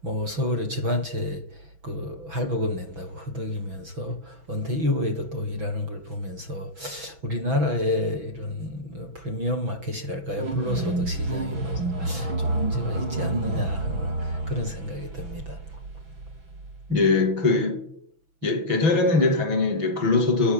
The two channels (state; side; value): late; left; 6.1 ms